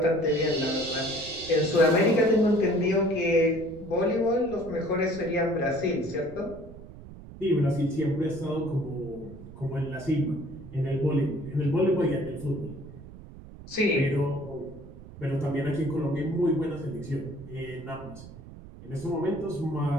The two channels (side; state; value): right; noise; rumble, 16 dB below the sound